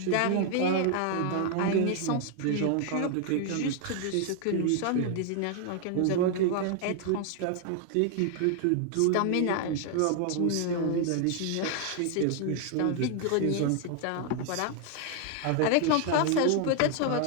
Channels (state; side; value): different; both; correlation 0.00